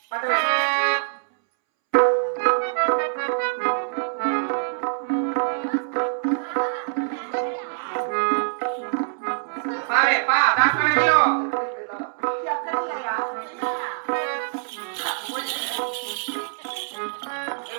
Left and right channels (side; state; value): left; silent; 62 dB below the other